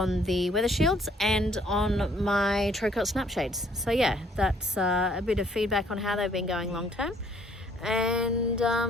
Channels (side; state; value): both; normal; correlation 0.62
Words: the weather shields and on my Trocott snap shades. So yeah, that's a bit of feedback on how they've been going long term. And